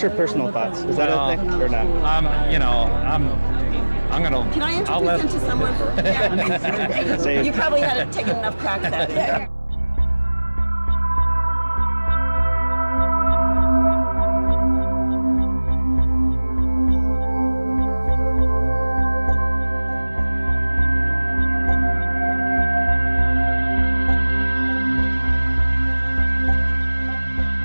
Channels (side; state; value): both; inverted; correlation -1.00